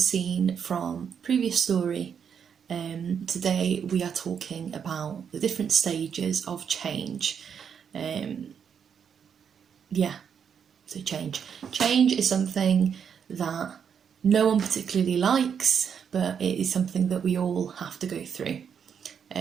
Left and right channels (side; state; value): left; quieter; 7.4 dB